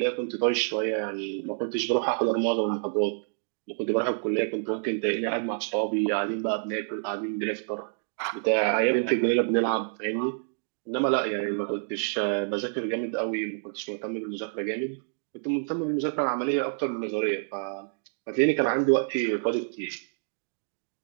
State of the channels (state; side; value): silent; left; digital silence